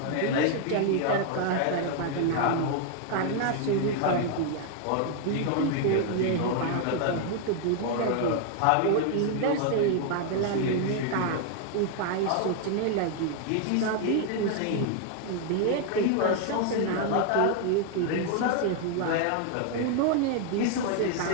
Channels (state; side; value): different; both; correlation 0.00